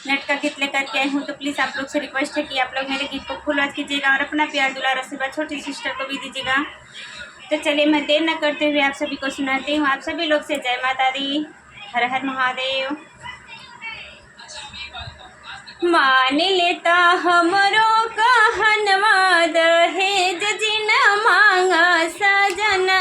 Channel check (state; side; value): identical; both; correlation 1.00